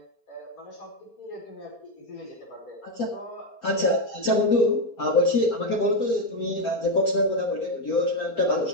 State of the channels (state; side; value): late; right; 4.3 ms